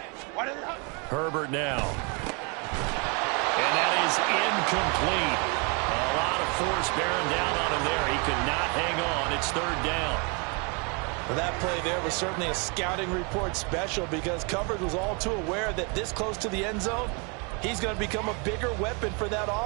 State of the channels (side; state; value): left; quieter; 32.6 dB